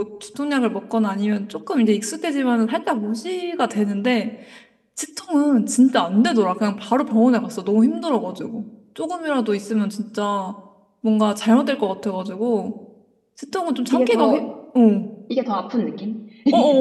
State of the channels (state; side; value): identical; both; correlation 1.00